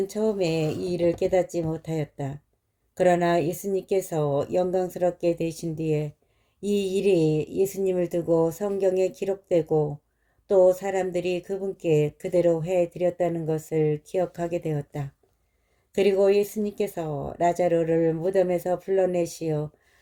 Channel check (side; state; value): both; identical; correlation 1.00